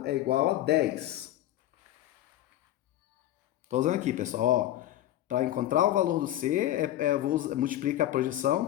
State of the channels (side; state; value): right; quieter; 13.6 dB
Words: é igual a 10. Estou usando aqui, pessoal, ó. Para encontrar o valor do C, eu vou multiplicar a projeção